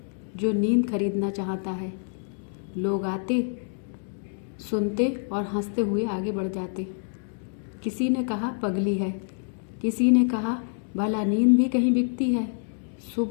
जो नींद खरीदना चाहता है। लोग आते, सुनते और हंसते हुए आगे बढ़ जाते। किसी ने कहा पगली है, किसी ने कहा भला नींद भी कहीं बिकती है।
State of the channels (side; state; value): right; silent; 60 dB below the other